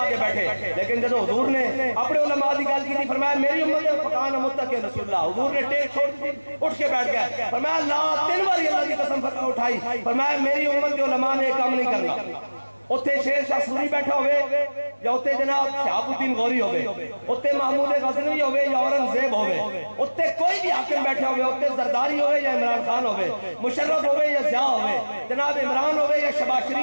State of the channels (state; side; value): inverted; both; correlation -1.00